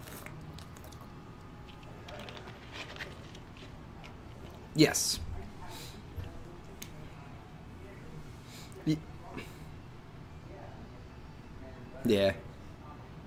Yes. Y- Yeah.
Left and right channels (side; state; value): both; identical; correlation 1.00